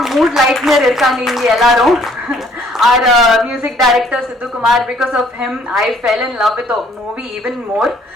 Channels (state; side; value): normal; both; correlation 0.61